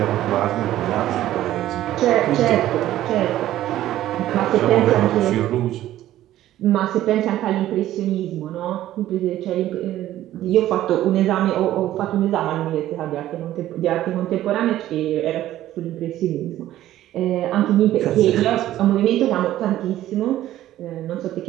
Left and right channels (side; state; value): left; quieter; 13.6 dB